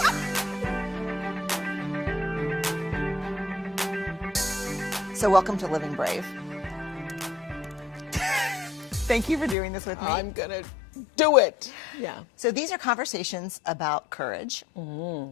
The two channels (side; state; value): right; drops out; at 9.6 s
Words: So welcome to Living Brave. Thank you for doing this with me. I'm going to do it. Yeah. So these are conversations about courage